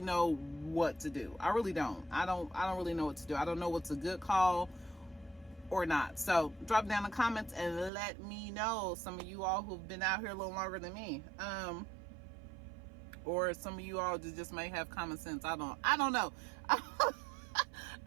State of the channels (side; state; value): left; drops out; at 7.9 s